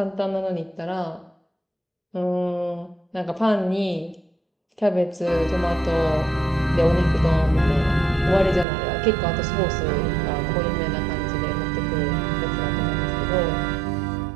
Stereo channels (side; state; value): left; drops out; at 8.7 s